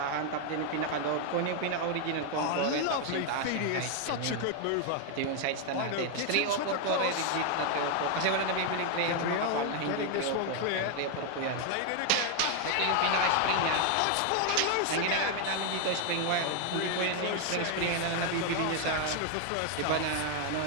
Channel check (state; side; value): different; both; correlation 0.00